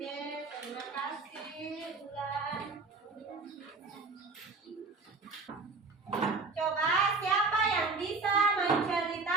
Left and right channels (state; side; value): quieter; left; 4.0 dB